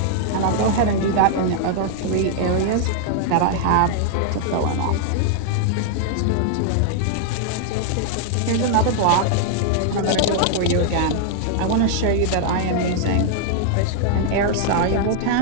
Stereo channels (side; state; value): both; different; correlation -0.01